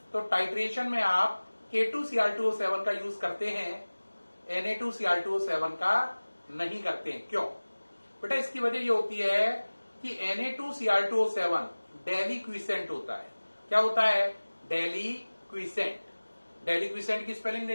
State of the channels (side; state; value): both; inverted; correlation -1.00